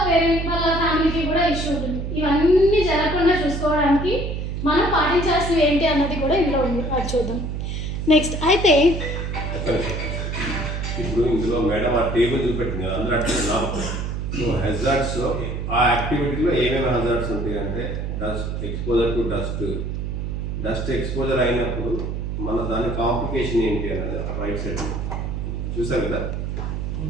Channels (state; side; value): noise; right; hum, 3 dB below the sound